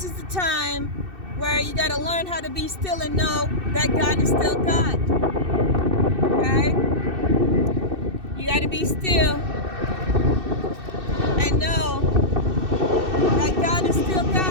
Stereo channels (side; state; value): left; late; 2.6 ms